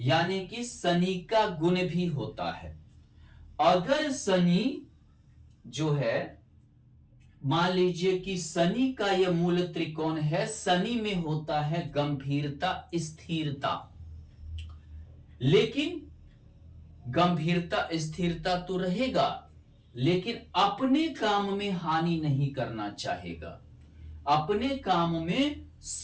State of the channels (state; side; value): identical; both; correlation 1.00